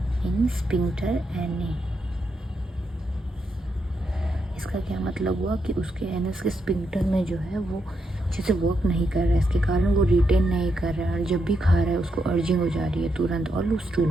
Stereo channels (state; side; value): normal; both; correlation 0.82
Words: in sphincter ani. इसका क्या मतलब हुआ कि उसके एनएस के स्पिंक्टर में जो है वो अच्छे से वर्क नहीं कर रहा है, इसके कारण वो रिटेन नहीं कर रहा है और जब भी खा रहा है उसको अर्जिंग हो जा रही है तुरंत और लूज स्टूल